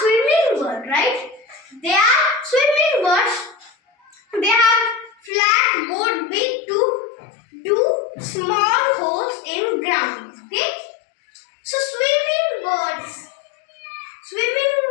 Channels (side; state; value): right; drops out; at 5.3 s